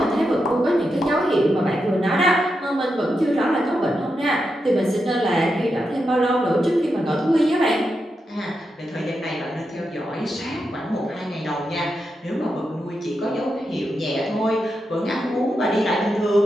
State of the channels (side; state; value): both; normal; correlation 0.86